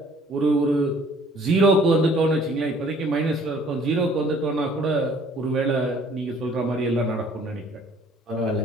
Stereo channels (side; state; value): both; normal; correlation 0.56